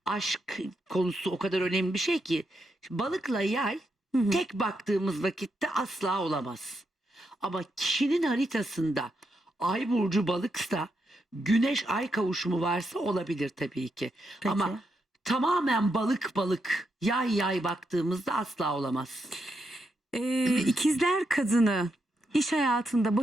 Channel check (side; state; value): both; normal; correlation 0.82